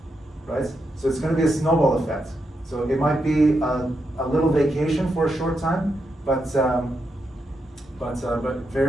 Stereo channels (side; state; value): both; normal; correlation 0.83